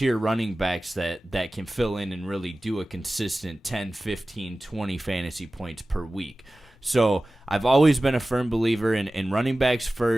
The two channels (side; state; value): both; normal; correlation 0.96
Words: running backs that can fill in and really do a consistent 10, 15, 20 fantasy points per week. So I've always been a firm believer in running backs